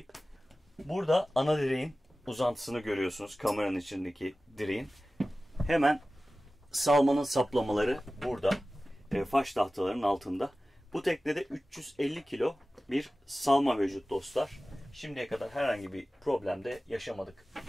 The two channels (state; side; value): normal; both; correlation 0.96